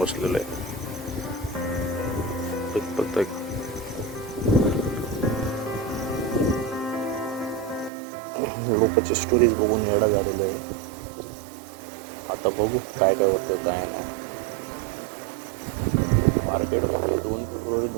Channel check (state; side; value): drops out; left; at 7.9 s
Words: बसलेलं आहे. प्रत्येक लोकांची स्टोरीज बघून वेळा झालेलं आहे. आता बघू काय काय होतं काय नाही. मार्केटमध्ये 2 फेब्रुवारी